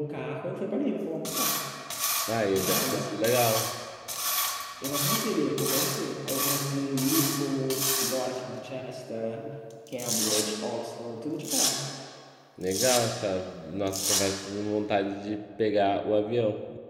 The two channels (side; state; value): both; identical; correlation 1.00